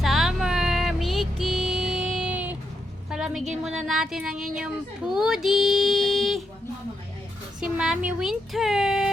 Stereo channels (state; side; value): normal; both; correlation 0.81